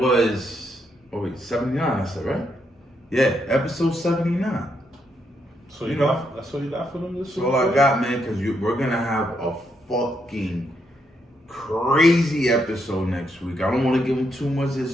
79. I said, right? Yeah, episode 79. So you know, that's all you got for them this week? That's all I got, man, because we're going to have a fucking crazy episode next week. I don't want to give them too much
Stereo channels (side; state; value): both; normal; correlation 0.78